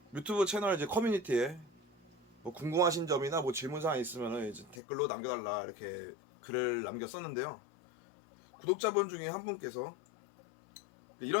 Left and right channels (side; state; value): right; drops out; at 4.8 s